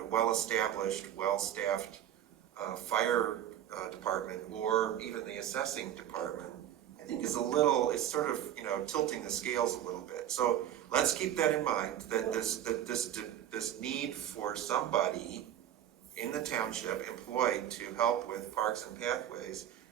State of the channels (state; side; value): quieter; left; 11.0 dB